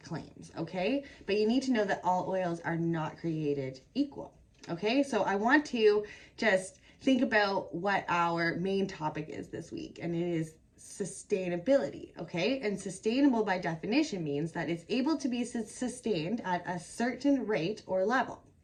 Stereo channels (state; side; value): identical; both; correlation 1.00